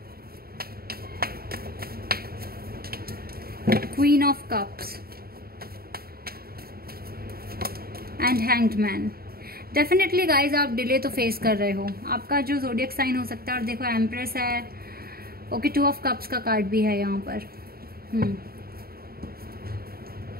Queen of Cups and Hanged Man। Definitely guys आप delay तो face कर रहे हो, आपका जो ज़ोडिएक साइन हो सकता है। और देखो एम्प्रेस है, ओके, 2 ऑफ कप्स का कार्ड भी है यहाँ पर।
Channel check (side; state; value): left; late; 0.44 ms